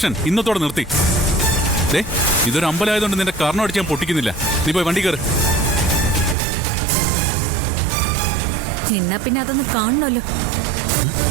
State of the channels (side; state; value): left; drops out; at 6.4 s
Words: ഇന്നത്തോടെ നിർത്തി. ഇതൊരു അമ്പലമായതുകൊണ്ട് നിന്റെ കർണം അടിച്ച് ഞാൻ പൊട്ടിക്കുന്നില്ല. നീ പോയി വണ്ടി കയറ്. എന്നാ പിന്നെ അതൊന്ന് കാണണമല്ലോ.